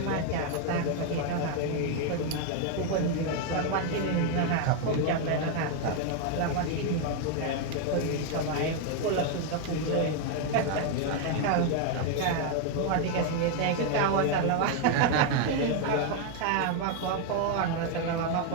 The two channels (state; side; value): different; both; correlation 0.01